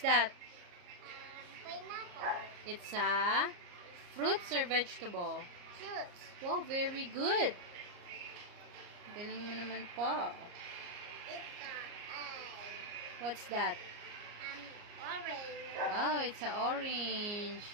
Pineapple. It's a fruits or vegetable? Fruits. Wow, very good. Galing mo naman po. Ito ay What's that? orange. Wow, it's a orange.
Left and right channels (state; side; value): late; left; 34 ms